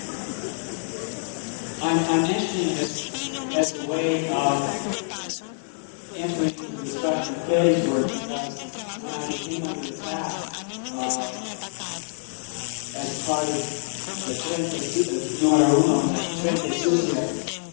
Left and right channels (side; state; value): right; silent; digital silence